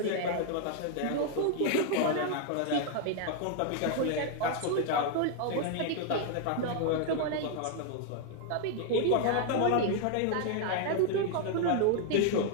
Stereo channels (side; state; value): both; different; correlation 0.00